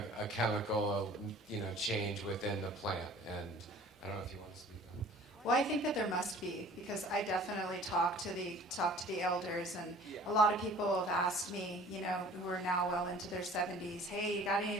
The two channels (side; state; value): both; normal; correlation 0.48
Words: chemical, change within the plant? And I don't know if you want to speak on it. Well, I think that there must be, because I definitely talk to the elders, and a lot of people have asked me, who are now well into their 70s, hey, you got any